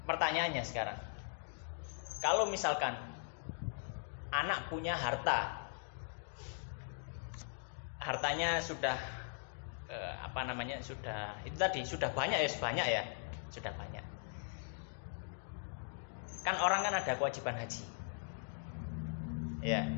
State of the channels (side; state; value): right; silent; digital silence